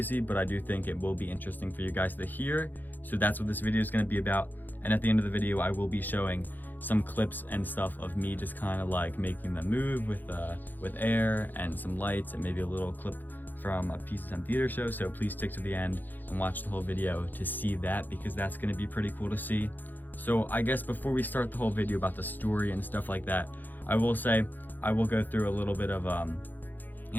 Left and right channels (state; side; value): late; right; 0.087 ms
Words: but I do think it will be interesting for you guys to hear. So that's what this video is going to be about. And at the end of the video, I will be showing some clips and stuff of me just kind of like making them move with air and some lights and maybe a little clip from a Pizza Time Theater show. So please stick to the end and watch the whole video to see that, because that's going to be pretty cool to see. So I guess before we start the whole video about the story and stuff like that, I will say I will go through a little bit of